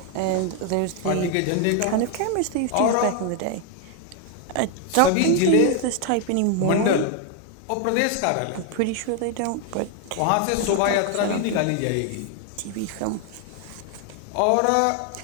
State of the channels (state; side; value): different; both; correlation 0.01